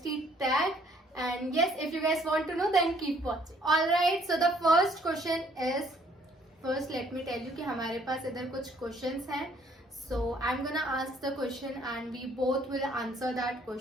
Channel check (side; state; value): both; normal; correlation 0.63